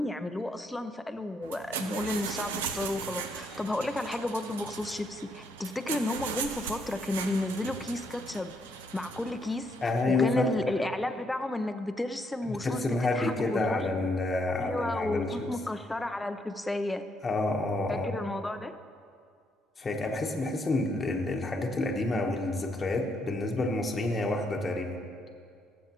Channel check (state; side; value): normal; both; correlation 0.74